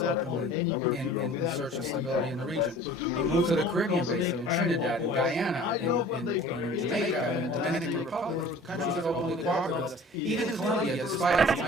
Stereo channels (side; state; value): both; normal; correlation 0.45